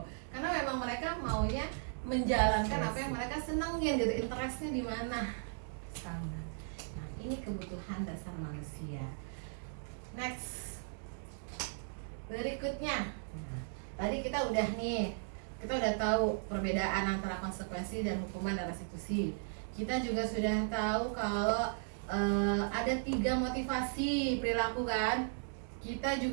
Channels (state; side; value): silent; left; digital silence